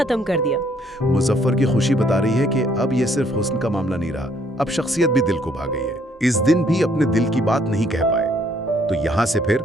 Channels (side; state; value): both; normal; correlation 0.66